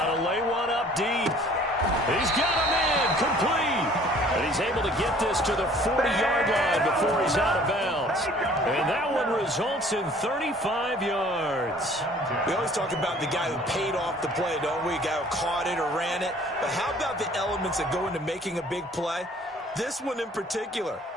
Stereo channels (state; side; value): normal; both; correlation 0.53